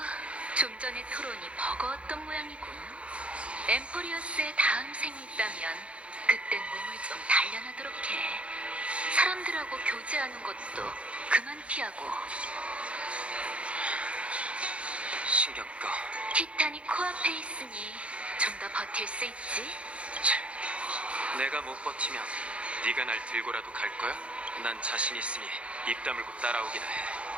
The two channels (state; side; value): late; left; 0.061 ms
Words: 좀 전의 토론이 버거웠던 모양이군. 엠포리어스의 다음 생이 있다면 그땐 몸을 좀 단련하도록 해. 사람들하고 교제하는 것도 그만 피하고. 신경 꺼. 티탄이 코앞에 있으니 좀 더 버틸 수 있지? 내가 못 버티면 네가 날 들고라도 갈 거야? 난 자신 있으니 입 다물고 따라오기나